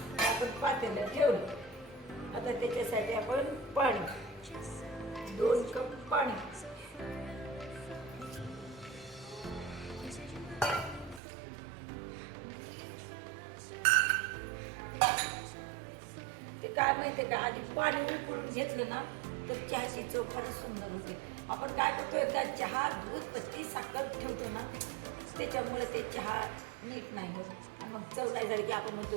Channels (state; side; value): drops out; left; at 11.2 s